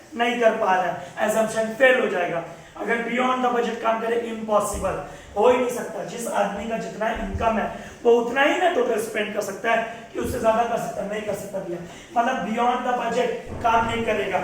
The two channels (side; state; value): both; identical; correlation 1.00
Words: नहीं कर पा रहा है, एजम्पशन फेल हो जाएगा। अगर बियॉन्ड द बजट काम करे, इम्पॉसिबल, हो ही नहीं सकता। जिस आदमी का जितना इनकम है वो उतना ही ना टोटल स्पेंड कर सकता है, कि उससे ज्यादा कर सकता है? नहीं कर सकता भैया। मतलब बियॉन्ड द बजट काम नहीं करेगा,